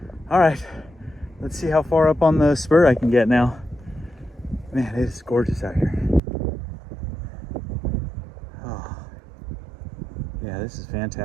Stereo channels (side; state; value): left; drops out; at 6.2 s